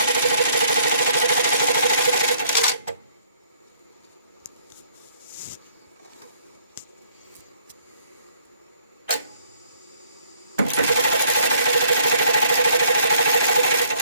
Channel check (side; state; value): both; inverted; correlation -0.62